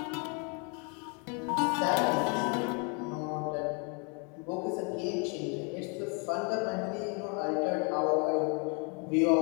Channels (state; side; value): quieter; right; 35.2 dB